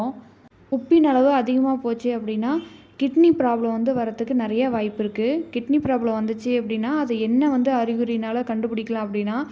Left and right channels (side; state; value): both; identical; correlation 1.00